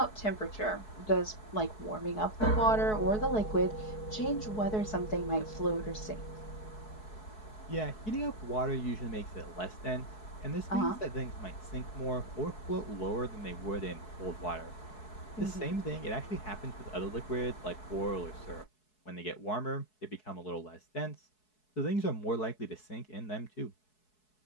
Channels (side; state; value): right; late; 4.7 ms